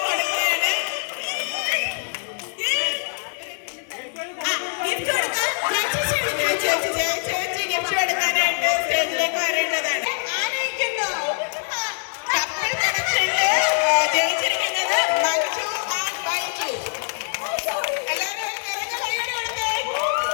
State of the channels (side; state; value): right; silent; digital silence